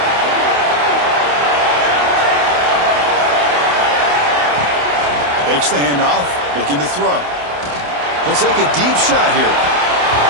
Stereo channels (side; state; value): left; late; 28 ms